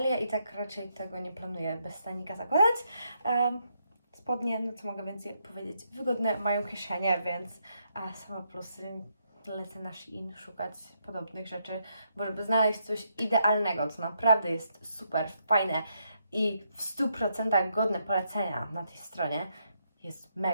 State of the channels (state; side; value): inverted; both; correlation -0.78